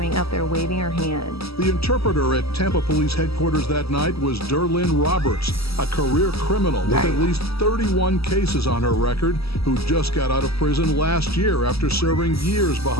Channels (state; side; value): late; right; 0.77 ms